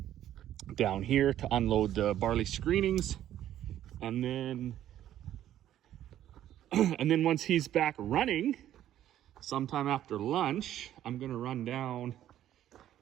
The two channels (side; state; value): left; quieter; 11.9 dB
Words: down here to unload the barley screenings. And then once he's back running, sometime after lunch, I'm going to run down,